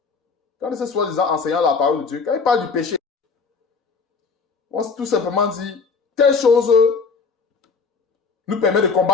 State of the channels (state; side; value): quieter; right; 4.9 dB